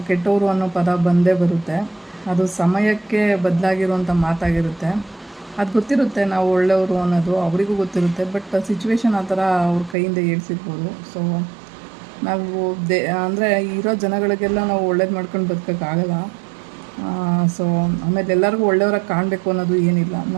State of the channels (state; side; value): drops out; left; at 10.0 s